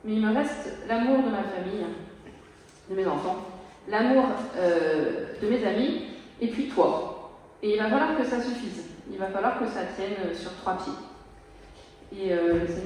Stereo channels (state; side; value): identical; both; correlation 1.00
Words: mais il me reste l'amour de ma famille, de mes enfants, l'amour de mes amis, et puis toi. Et il va falloir que ça suffise. Il va falloir que ça tienne sur 3 pieds. Et le